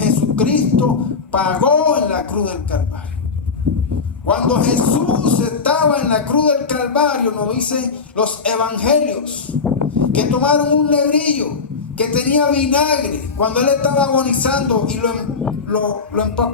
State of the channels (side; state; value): right; quieter; 4.9 dB